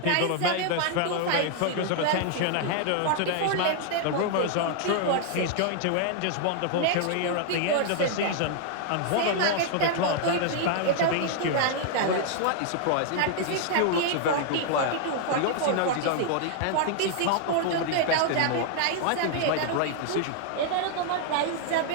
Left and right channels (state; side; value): different; both; correlation 0.00